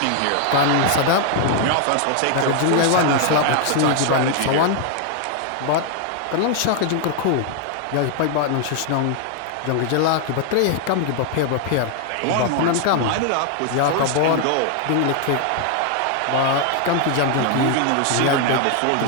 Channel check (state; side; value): different; both; correlation 0.00